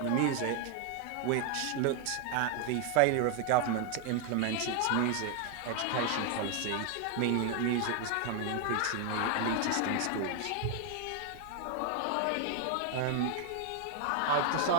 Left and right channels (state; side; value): different; both; correlation 0.01